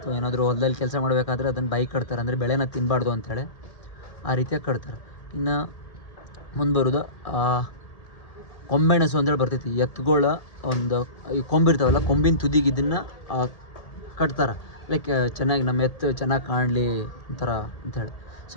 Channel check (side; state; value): right; late; 1.8 ms